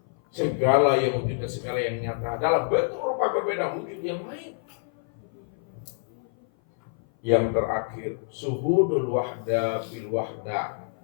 segala yang wujud dan segala yang nyata dalam bentuk rupa berbeda, wujud yang lain. Yang terakhir, suhudul wahda bil wahda.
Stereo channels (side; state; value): right; silent; 56 dB below the other